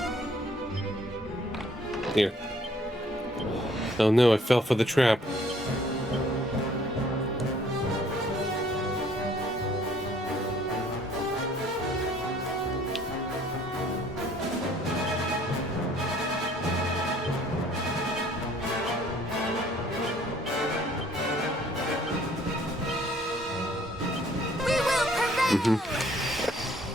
Here. Oh no, I fell for the trap.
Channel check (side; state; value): both; normal; correlation 0.59